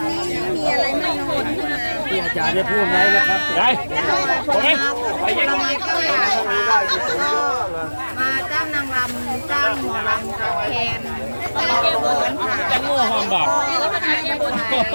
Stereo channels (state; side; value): inverted; both; correlation -1.00